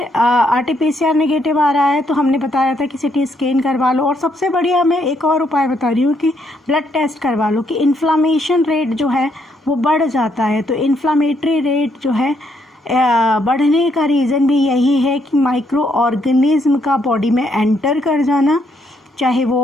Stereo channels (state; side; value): normal; both; correlation 0.74